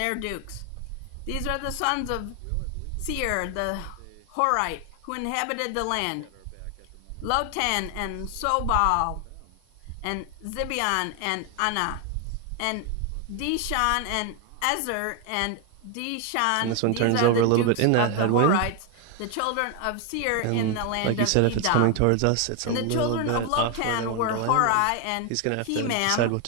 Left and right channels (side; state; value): both; different; correlation 0.01